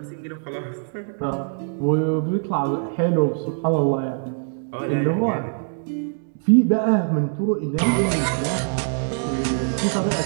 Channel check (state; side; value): silent; left; 63 dB below the other